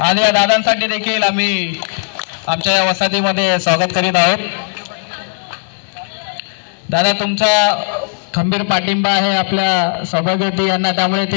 आणि या दादांसाठी देखील आम्ही आमच्या या वसाहतीमध्ये स्वागत करीत आहोत. दादा, तुमचा खंबीर पाठिंबा आहे आपल्या सौभाग्यवती यांना, त्यामुळे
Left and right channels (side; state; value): right; silent; 69 dB below the other